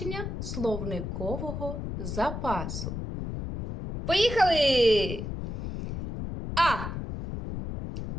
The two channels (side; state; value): left; noise; rumble, 5 dB below the sound